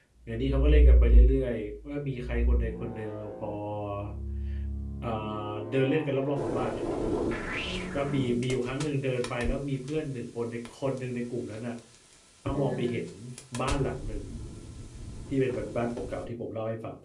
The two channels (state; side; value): identical; both; correlation 1.00